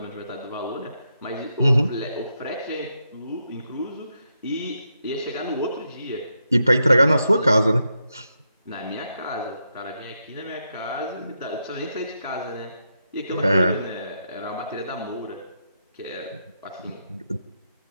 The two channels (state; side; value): inverted; both; correlation -0.83